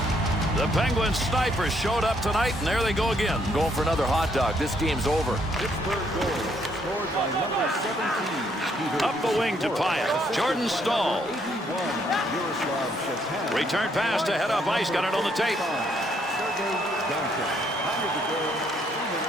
The Penguins snipers showed up tonight, and there they go again. Going for another hot dog. This game's over. Pittsburgh goal scored by number 17. Up the wing to Pyatt. Jordan Stahl. Return pass to head up ice. Got it on the tape.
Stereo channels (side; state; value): both; normal; correlation 0.70